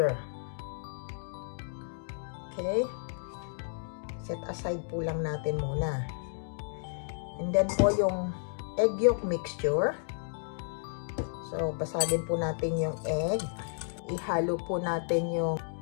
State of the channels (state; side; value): silent; right; digital silence